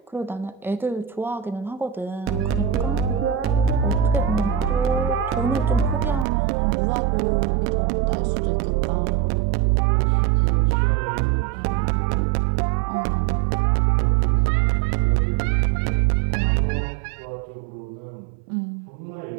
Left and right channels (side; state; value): left; drops out; at 6.2 s